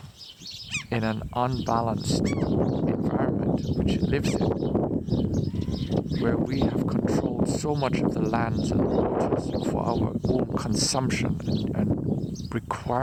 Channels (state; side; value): identical; both; correlation 1.00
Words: in an unbalanced environment which it lives in, where we have controlled so much of the lands and the waters for our own consumption and